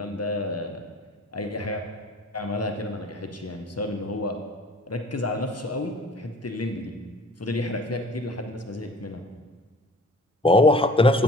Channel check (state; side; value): normal; both; correlation 0.48